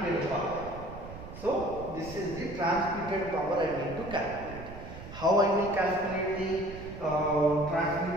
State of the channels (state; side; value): noise; right; rumble, 13 dB below the sound